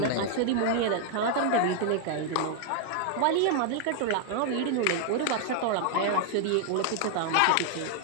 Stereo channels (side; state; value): both; different; correlation 0.00